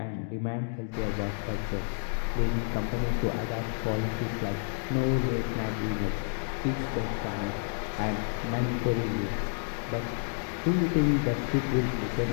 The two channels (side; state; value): right; silent; digital silence